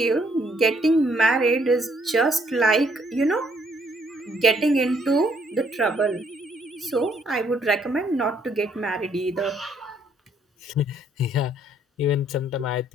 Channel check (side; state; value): both; normal; correlation 0.67